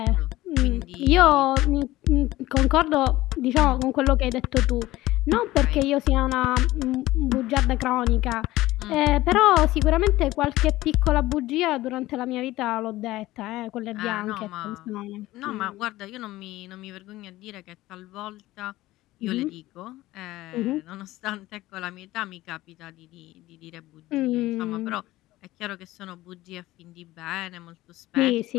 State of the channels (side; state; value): right; quieter; 17.1 dB